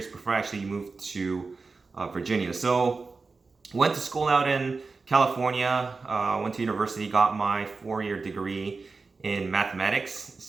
before I actually moved to Virginia. So went to school out in California, went to university, got my 4-year degree in mathematics.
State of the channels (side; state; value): left; quieter; 4.2 dB